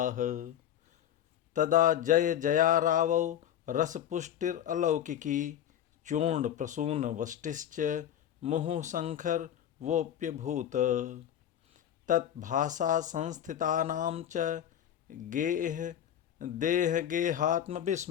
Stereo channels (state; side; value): quieter; right; 10.4 dB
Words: तदा जय जयारावौ रसपुष्टिरलौकिकी चूर्णप्रसूनवष्टिश्च मुहुःशङ्खरवोऽप्यभूत् तद्भासा संस्थितानां च